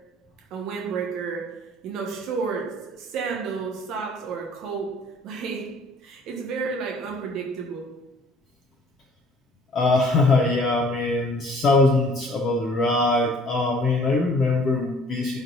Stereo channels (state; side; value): normal; both; correlation 0.54